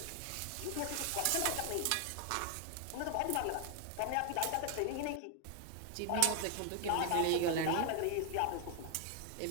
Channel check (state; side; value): different; both; correlation 0.00